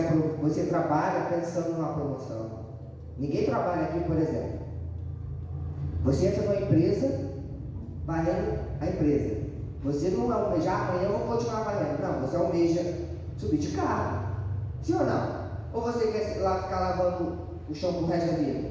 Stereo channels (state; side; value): identical; both; correlation 1.00